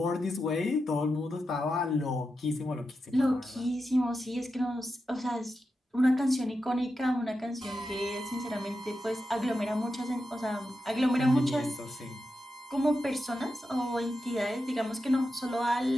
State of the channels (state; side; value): normal; both; correlation 0.89